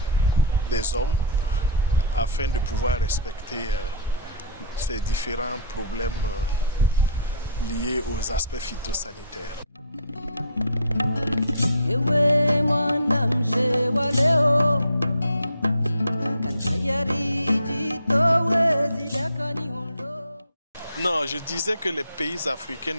des hommes afin de pouvoir respecter ces différents problèmes liés aux aspects phytosanitaires. Non, je disais que les pays africains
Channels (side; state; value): both; inverted; correlation -0.44